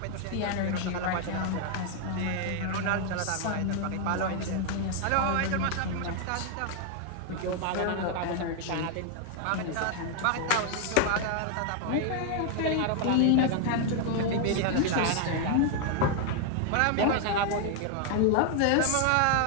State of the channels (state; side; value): different; both; correlation 0.00